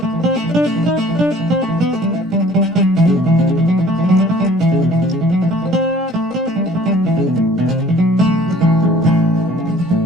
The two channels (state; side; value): normal; both; correlation 0.53